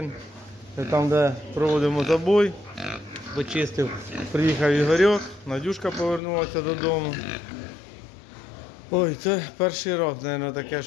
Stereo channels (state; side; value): drops out; right; at 6.2 s